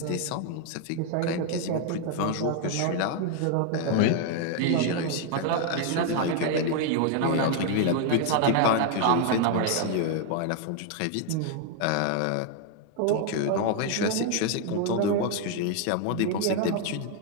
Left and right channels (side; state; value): both; different; correlation 0.00